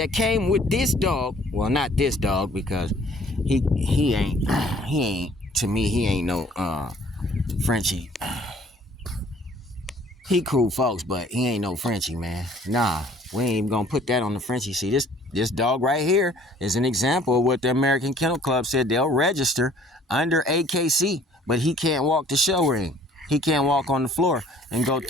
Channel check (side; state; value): both; normal; correlation 0.55